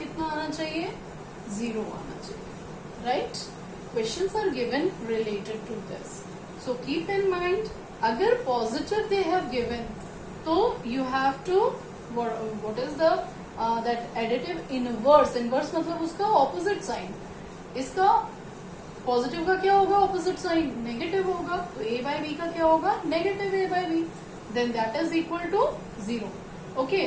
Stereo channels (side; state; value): both; identical; correlation 1.00